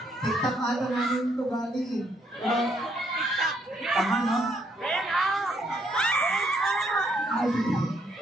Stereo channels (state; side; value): normal; both; correlation 0.72